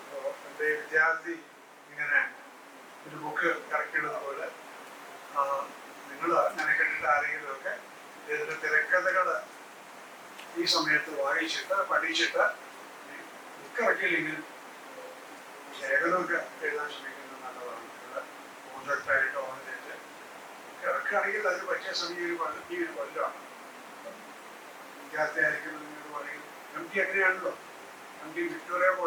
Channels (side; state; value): both; identical; correlation 1.00